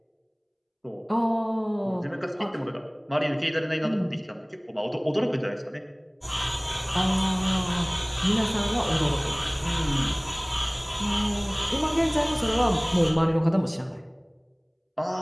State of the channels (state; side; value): identical; both; correlation 1.00